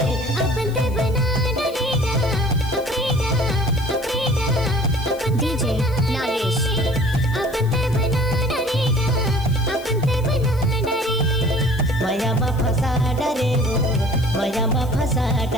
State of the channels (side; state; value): left; noise; hiss, 22 dB below the sound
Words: अपन ते बना डरेगा अपरेगा अपन ते डीजे नागेश अपन ते बना डरेगा अपन ते बना डरे मया मा फसा डरे वो मया मा फसा